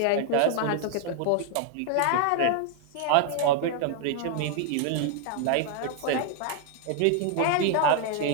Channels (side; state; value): both; different; correlation 0.00